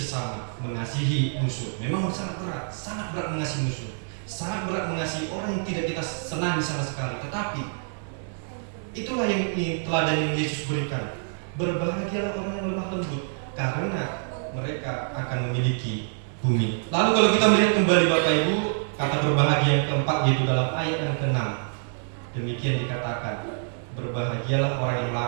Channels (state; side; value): silent; left; digital silence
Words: mengasihi musuh. Memang sangat berat mengasihi musuh, sangat berat mengasihi orang yang tidak kita senangi sama sekali. Tetapi itulah yang teladan yang Yesus berikan. Berbahagialah orang yang lemah lembut, karena mereka akan memiliki bumi. Lalu kalau kita melihat kembali Bapak Ibu, kata berbahagia yang keempat yaitu dalam ayat yang ke-6. Demikian dikatakan, berbahagialah orang yang